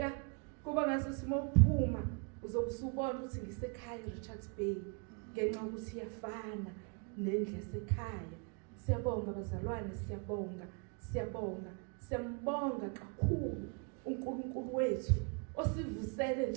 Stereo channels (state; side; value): quieter; left; 35.7 dB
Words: kuba ngaso simophuma uzobusubona ukuthi ngisekhaya eRichards Bay ngenxa ukuthi iyafana nendlu yasekhaya. Siyabonga bazalwane, siyambonga kakhulu uNkulunkulu wethu osivusele